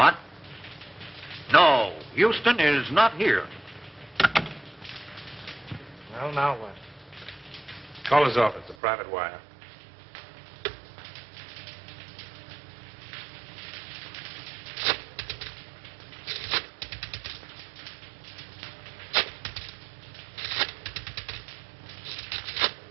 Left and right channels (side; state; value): left; drops out; at 8.8 s